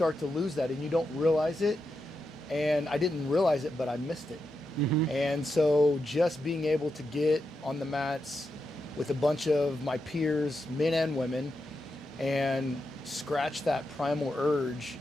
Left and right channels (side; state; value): both; normal; correlation 0.86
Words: to lose that and you don't realize it. And I didn't realize it, but I missed it. Mm-hmm. And so just being able to get on the mats with a bunch of my peers, men and women, and scratch that primal urge